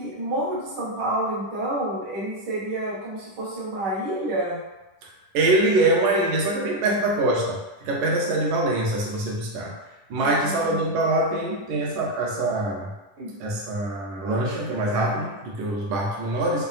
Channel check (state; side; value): late; left; 10 ms